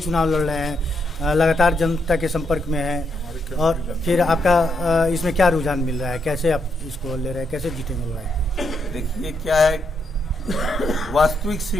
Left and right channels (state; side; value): normal; both; correlation 0.79